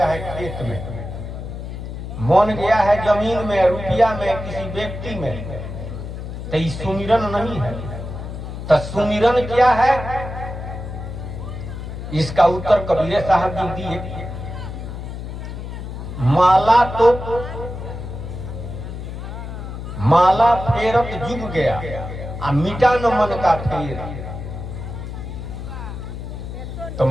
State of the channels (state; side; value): noise; left; hum, 8 dB below the sound